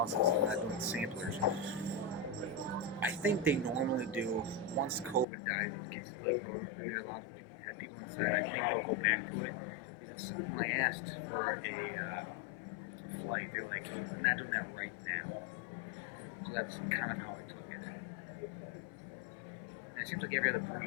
and I'm not doing samplers. I think they normally do, once COVID dies, it gets like, and they're allowed to have people inside, I think they'll go back to it. Because when I asked for a flight, they're like, we're not doing that right now. So that's kind of how I took it. And it seems like every other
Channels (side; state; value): right; drops out; at 5.2 s